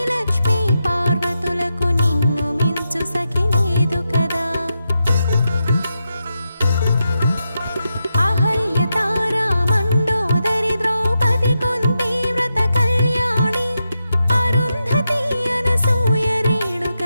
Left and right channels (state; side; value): inverted; both; correlation -0.87